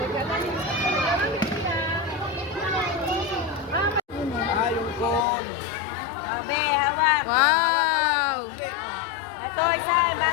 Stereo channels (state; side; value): drops out; right; at 5.2 s